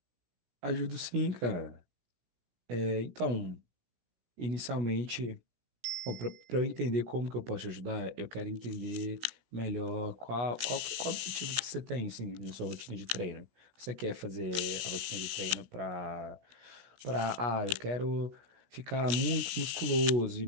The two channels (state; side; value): late; left; 16 ms